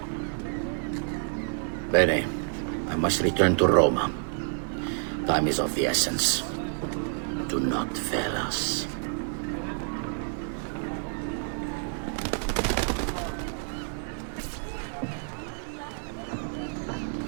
Bene, I must return to Roma. Time is of the essence. Do not fail us.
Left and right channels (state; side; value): silent; left; 59 dB below the other